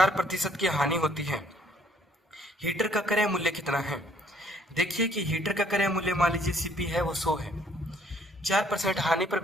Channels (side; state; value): both; normal; correlation 0.63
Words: की हानि होती है। हीटर का क्रय मूल्य कितना है। देखिए कि हीटर का क्रय मूल्य मान लीजिए सीपी है वो 100 है, 4% हानि पर